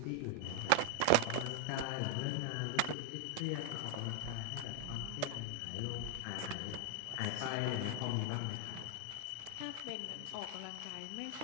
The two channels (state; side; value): different; both; correlation 0.00